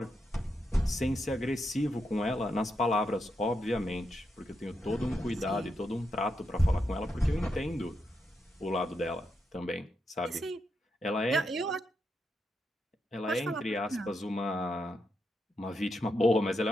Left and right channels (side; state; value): both; normal; correlation 0.83